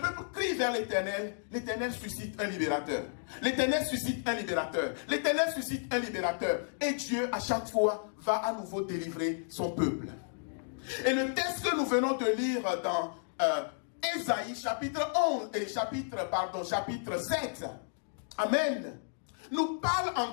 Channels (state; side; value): silent; right; digital silence